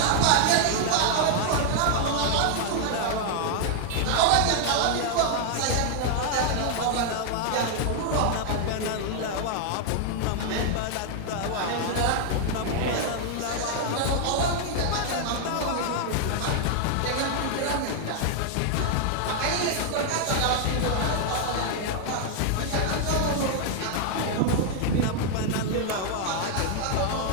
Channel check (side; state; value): both; different; correlation 0.00